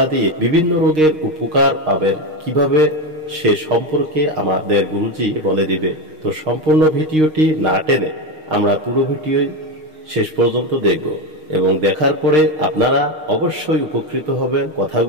দিয়ে বিভিন্ন রোগের উপকার পাবেন কিভাবে সে সম্পর্কে আমাদের গুরুজি বলে দিবে। তো সম্পূর্ণ ভিডিওটি না টেনে আমরা পুরো ভিডিও শেষ পর্যন্ত দেখব এবং দেখার পরে আপনারা অবশ্যই উপকৃত হবেন।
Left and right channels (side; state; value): left; late; 6.5 ms